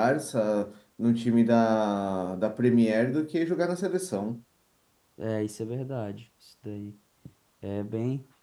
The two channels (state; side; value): identical; both; correlation 1.00